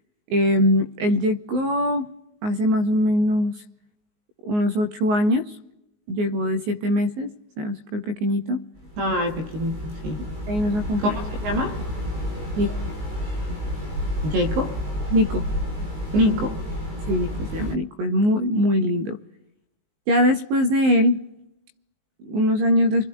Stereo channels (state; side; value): late; left; 19 ms